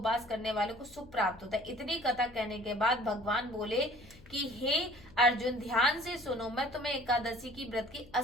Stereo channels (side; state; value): left; noise; hum, 22 dB below the sound